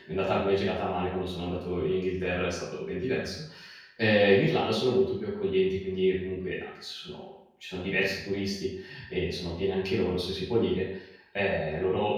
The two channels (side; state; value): both; identical; correlation 1.00